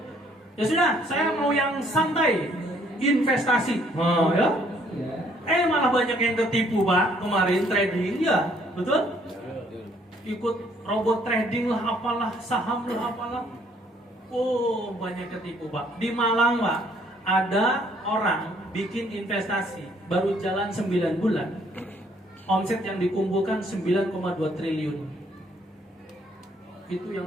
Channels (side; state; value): both; normal; correlation 0.64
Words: Ya sudah, saya mau yang santai, investasi. Ya. Malah banyak yang tertipu Pak kemarin trading ya, betul? Ikut robot trading lah, apalah, saham lah, apalah. Oh banyak ketipu Pak. Di Malang Pak, ada orang bikin investasi baru jalan 9 bulan, omset yang dikumpulkan 9,2 triliun. Itu